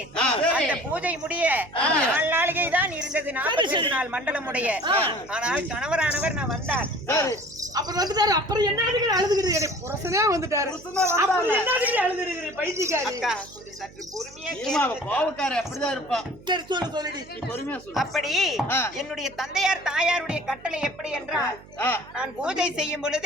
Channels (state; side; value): noise; right; hum, 21 dB below the sound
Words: அந்த பூஜை முடிய 4 நாளிகை தான் இருந்தது. 48 நாள் மண்டலம் உடைய. ஆனால் கணவரானவர் நான் வந்தார். அப்புறம் வந்துட்டாரு. அப்புறம் என்ன அழுதுகிறீங்க? புருஷனே வந்துட்டாரு. அப்புறம் என்ன அழுதுகிறீங்க? பைத்தியக்காரி. அக்கா கொஞ்சம் சற்று பொறுமையா ஏமா, கேளுங்க. கோவக்கார அப்படிதான் இருப்பா. சரி சொல்லுடி. பொறுமையா சொல்லு. அப்படி என்னுடைய தந்தையார் தாயாருடைய கட்டளை எப்படி என்றால் நான் பூஜை செய்யும்